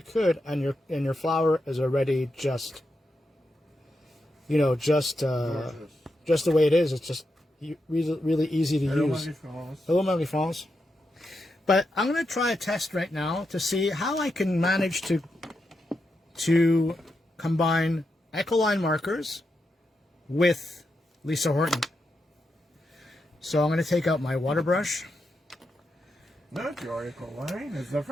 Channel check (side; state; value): both; normal; correlation 0.85